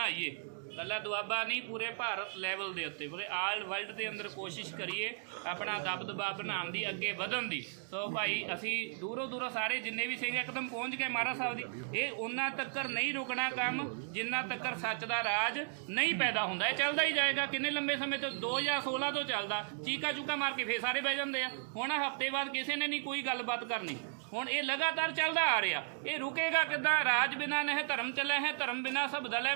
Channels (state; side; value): silent; left; digital silence